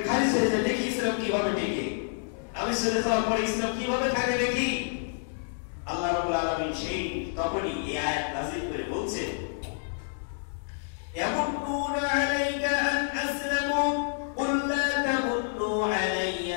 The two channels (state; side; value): silent; right; digital silence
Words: খারিজ হয়ে যায়, দেখি ইসলাম কিভাবে টিকে, আমি চলে যাওয়ার পরে ইসলাম কিভাবে থাকে দেখি। আল্লাহ রাব্বুল আলামিন সেই তখনই এই আয়াত নাযিল করে বলছেন ইয়ামুন্নুনা আলাইকা আন আসলামু কুল লা তামুন্নু